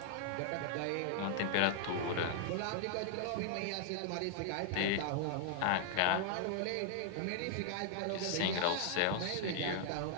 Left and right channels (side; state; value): both; different; correlation -0.01